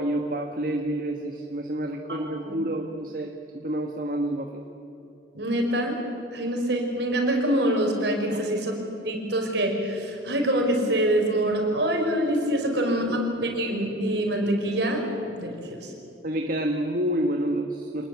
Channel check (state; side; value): normal; both; correlation 0.38